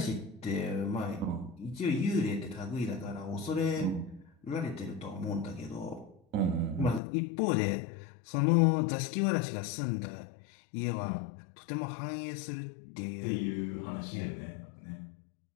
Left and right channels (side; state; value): right; drops out; at 7.0 s